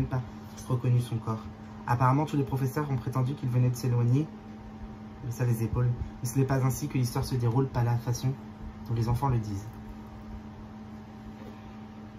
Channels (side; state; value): both; identical; correlation 1.00